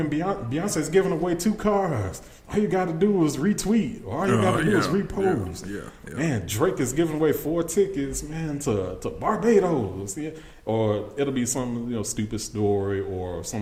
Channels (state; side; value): identical; both; correlation 1.00